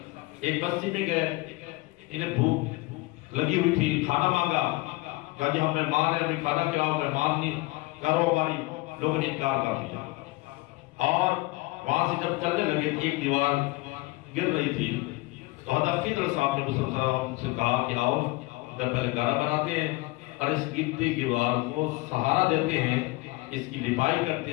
ایک بستی میں گئے، انہیں بھوک لگی ہوئی تھی، کھانا مانگا، کہا جی ہم مہمان ہیں، ہمیں کھانا کھلاؤ. مہمان نہیں کرو ہماری، لوگوں نے انکار کر دیا. اور وہاں سے جب چلنے لگے تو ایک دیوار گر رہی تھی. تو حضرت خضر صاحب نے موسیٰ علیہ السلام سے کہا کہ آؤ پہلے گھڑا بناتے ہیں اور اس گرتی دیوار کو سہارا دیتے ہیں، اس کی لپائی کرتے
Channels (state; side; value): quieter; right; 22.1 dB